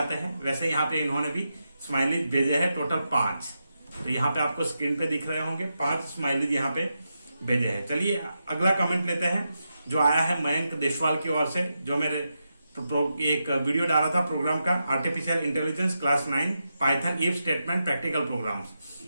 हैं, वैसे यहाँ पे इन्होंने भी स्माइलीज भेजे हैं, टोटल 5। तो यहाँ पे आपको स्क्रीन पे दिख रहे होंगे 5 स्माइलीज यहाँ पे भेजे हैं। चलिए अगला कमेंट लेते हैं, जो आया है मयंक देशवाल की ओर से, जो मेरे एक वीडियो डाला था प्रोग्राम का, artificial intelligence class 9 Python if statement practical programs.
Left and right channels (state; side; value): inverted; both; correlation -0.87